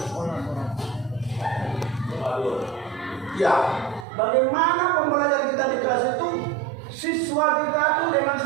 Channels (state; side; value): drops out; left; at 4.0 s